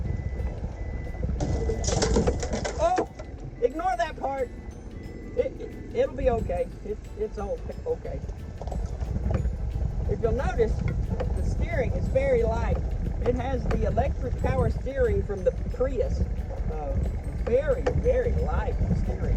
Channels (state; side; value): identical; both; correlation 1.00